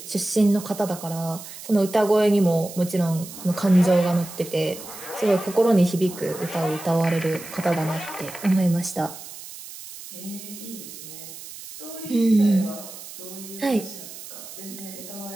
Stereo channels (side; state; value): right; noise; hiss, 14 dB below the sound